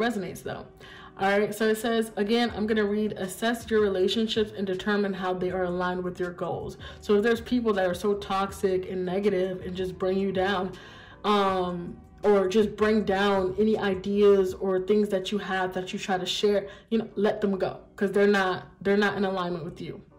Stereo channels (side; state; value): both; identical; correlation 1.00